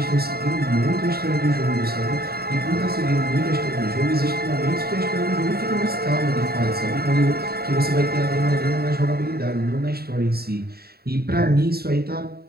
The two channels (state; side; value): late; left; 0.45 ms